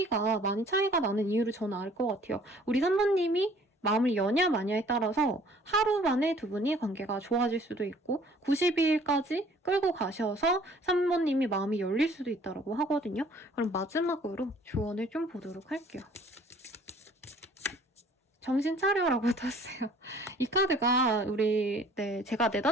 많이 차이가 나는 이유를 저는 알 것 같아요. 우리 3번님이 마음을 여냐 마냐에 따라서 하루 만에 두 분이 관계가 좋아질 수도 있고 92일까지 끌고 가셔서 3번님이 마음이 열릴 수도 있다고 하거든요. 그럼 마지막으로 조언을 좀 보도록 할게요. 정신 차려라고 떴어요. 이 카드가 제가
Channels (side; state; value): both; normal; correlation 0.55